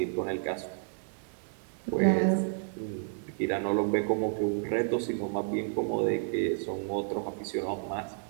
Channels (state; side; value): silent; left; 57 dB below the other